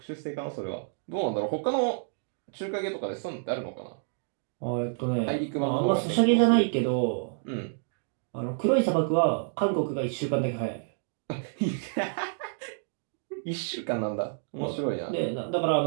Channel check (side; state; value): left; silent; digital silence